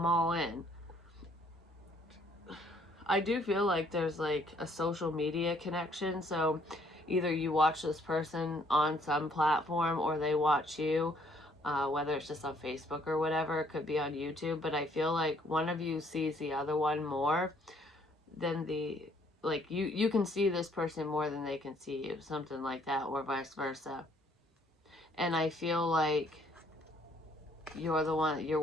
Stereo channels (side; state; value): both; normal; correlation 0.64